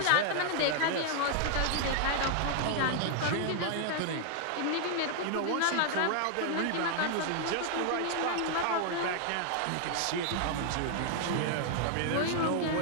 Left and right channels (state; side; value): different; both; correlation 0.00